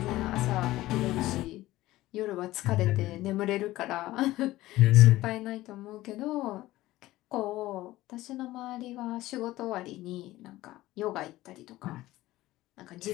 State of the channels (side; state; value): right; quieter; 16.8 dB